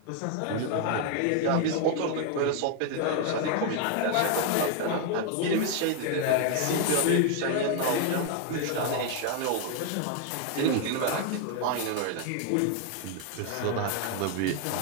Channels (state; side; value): different; both; correlation 0.00